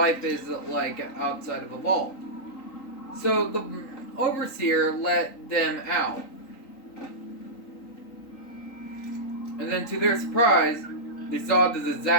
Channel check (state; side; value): late; right; 3.9 ms